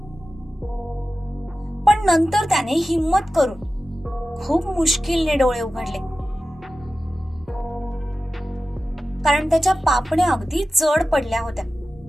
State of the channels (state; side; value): normal; both; correlation 0.94